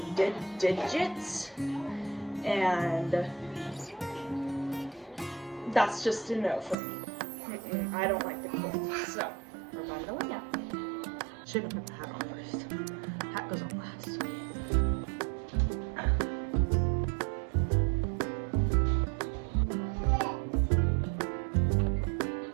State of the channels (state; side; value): drops out; left; at 6.8 s